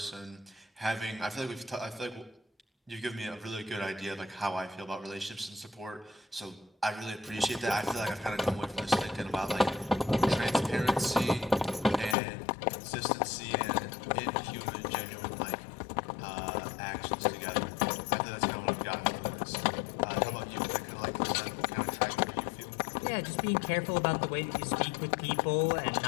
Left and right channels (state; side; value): drops out; right; at 12.2 s